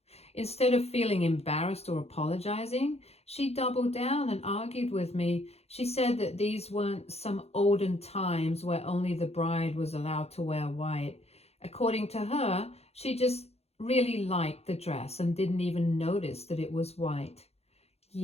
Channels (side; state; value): right; late; 0.30 ms